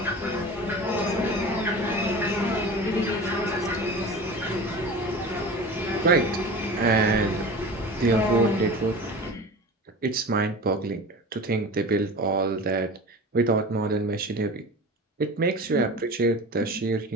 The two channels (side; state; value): both; normal; correlation 0.34